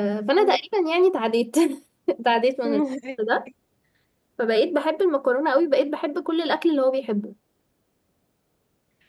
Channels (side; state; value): both; identical; correlation 1.00